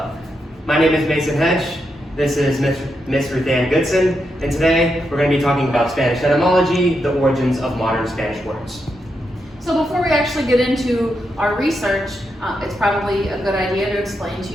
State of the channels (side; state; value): both; normal; correlation 0.84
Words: my name is Mason Hedge. This is Miss Ruthanne Gudzan, and today we're going to be talking about Spanish etymology, the origins of modern Spanish words. So before we actually get into our research, it's probably a good idea to explain to